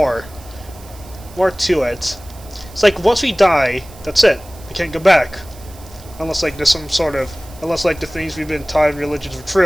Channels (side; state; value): right; noise; hiss, 22 dB below the sound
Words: to it. It's like once we die, that's it. We can't go back, unless like there's some sort of, unless like the things we've been taught in religions are